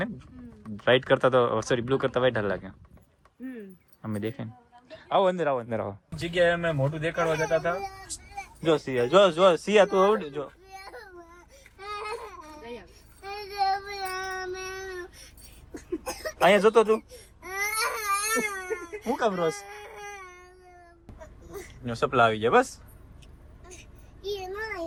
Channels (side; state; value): both; identical; correlation 1.00